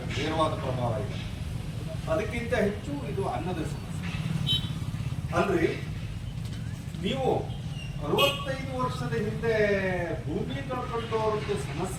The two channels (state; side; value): identical; both; correlation 1.00